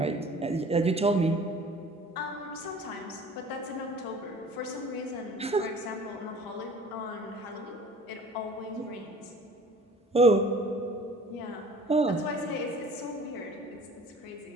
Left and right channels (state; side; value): normal; both; correlation 0.47